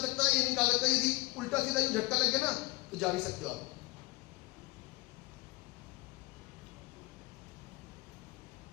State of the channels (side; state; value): right; quieter; 23.2 dB